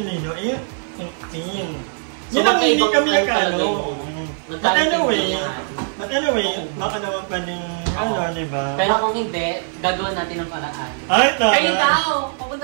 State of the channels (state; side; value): silent; left; 55 dB below the other